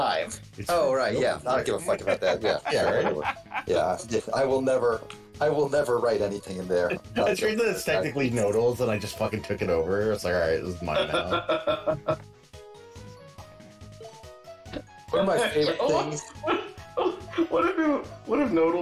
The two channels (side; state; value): both; identical; correlation 1.00